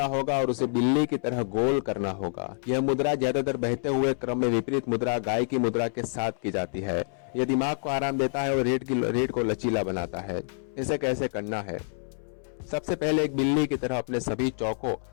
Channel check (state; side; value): silent; right; 60 dB below the other